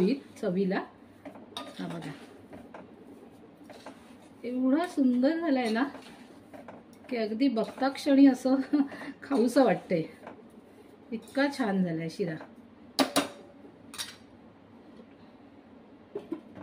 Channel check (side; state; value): both; identical; correlation 1.00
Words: चवीला. हा बघा एवढा सुंदर झालाय ना की अगदी बघता क्षणी असं खाऊसं वाटतंय, इतका छान झालाय शिरा.